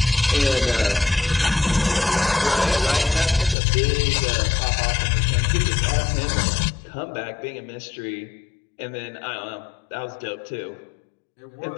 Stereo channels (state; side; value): drops out; right; at 3.6 s